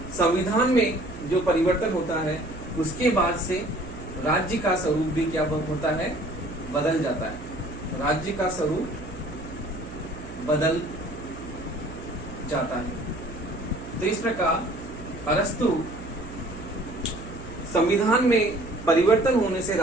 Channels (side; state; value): right; noise; hum, 14 dB below the sound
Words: संविधान में जो परिवर्तन होता है उसके बाद से राज्य का स्वरूप भी क्या होता है, बदल जाता है। राज्य का स्वरूप बदल जाता है। तो इस प्रकार अरस्तु संविधान में परिवर्तन होने से